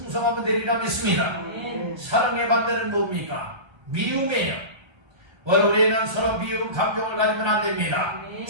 되리라 믿습니다. 사랑의 반대는 뭡니까? 미움이에요. 오늘 우리는 서로 미움 감정을 가지면 안 됩니다.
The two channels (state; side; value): late; left; 1.3 ms